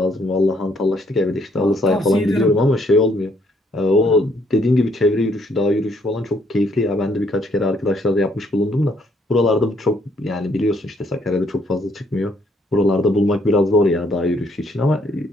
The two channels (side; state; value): both; normal; correlation 0.68